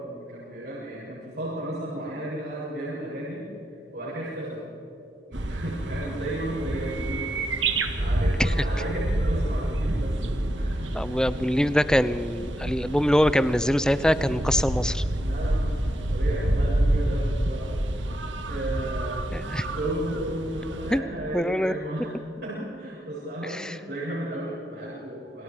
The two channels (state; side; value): normal; both; correlation 0.83